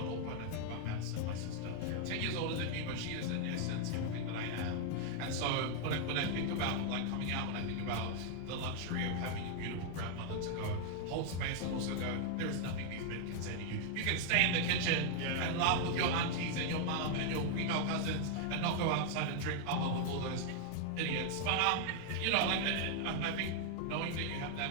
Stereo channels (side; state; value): both; different; correlation 0.00